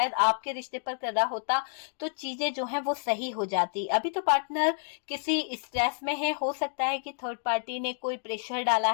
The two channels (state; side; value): silent; right; digital silence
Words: आपके रिश्ते पर कर रहा होता तो चीजें जो हैं वो सही हो जाती। अभी तो पार्टनर किसी स्ट्रेस में है। हो सकता है कि थर्ड पार्टी ने कोई प्रेशर डाला